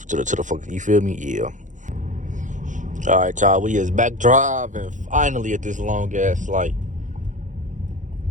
fuck. You feel me? Yeah. All right, y'all. We is back driving finally at this long ass light.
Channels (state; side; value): late; left; 0.36 ms